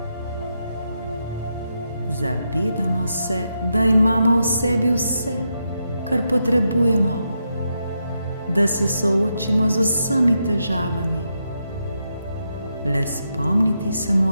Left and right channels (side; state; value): both; inverted; correlation -0.84